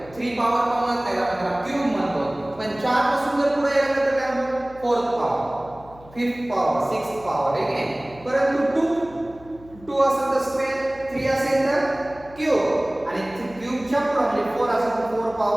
3 पॉवर पण म्हणत नाही आपण त्याला क्यूब म्हणतो. पण 4 पासून जर पुढे गेलं तर काय म्हणतो 4th power 5th power 6th power. ठीक आहे. परंतु 2 असेल तर स्क्वेअर 3 असेल तर क्यूब आणि क्यूबच्या पुढे म्हणजे 4 असेल तर 4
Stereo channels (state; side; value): noise; left; hum, 22 dB below the sound